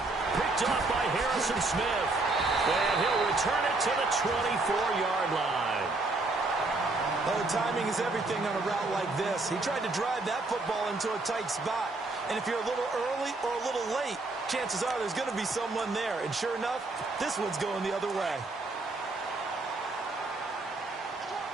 off by Harrison Smith. And he'll return it to the 24-yard line. Oh, timing is everything on a route like this. He tried to drive that football into a tight spot. And if you're a little early or a little late, chances are there's going to be someone there. And sure enough, this one's going the other way.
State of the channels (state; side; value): quieter; left; 3.2 dB